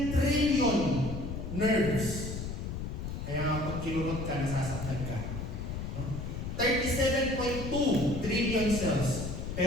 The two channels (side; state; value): left; noise; rumble, 5 dB below the sound